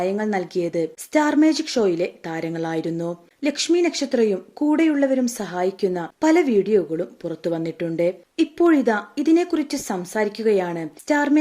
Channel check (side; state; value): both; identical; correlation 1.00